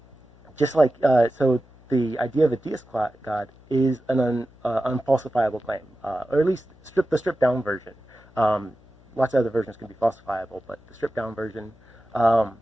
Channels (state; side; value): noise; left; hum, 27 dB below the sound